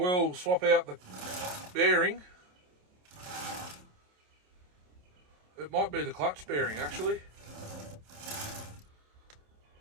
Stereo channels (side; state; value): left; late; 27 ms